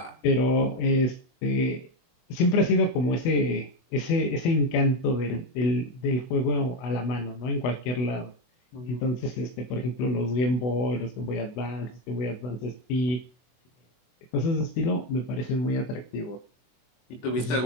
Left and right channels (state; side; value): late; right; 24 ms